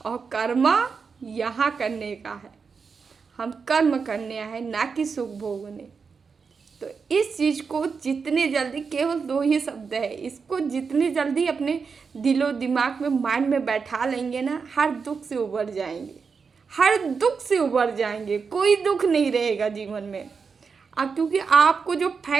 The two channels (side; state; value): left; quieter; 5.4 dB